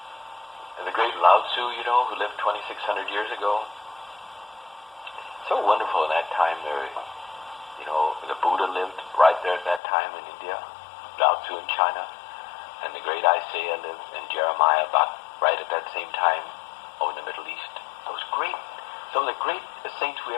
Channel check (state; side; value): drops out; right; at 9.8 s